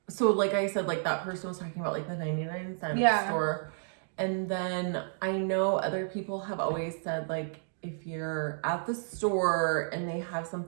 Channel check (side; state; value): left; silent; digital silence